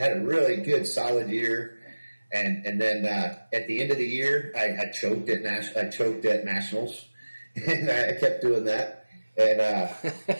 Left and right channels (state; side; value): inverted; both; correlation -1.00